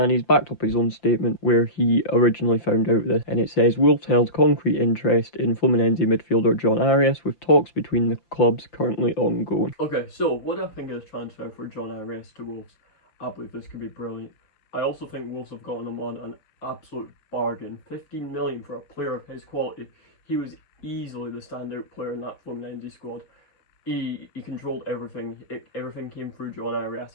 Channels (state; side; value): late; right; 5.8 ms